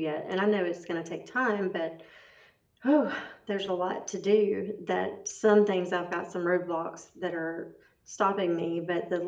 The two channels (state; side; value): identical; both; correlation 1.00